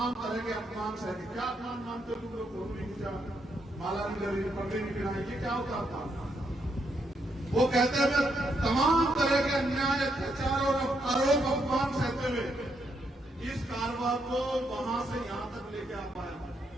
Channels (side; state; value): both; normal; correlation 0.77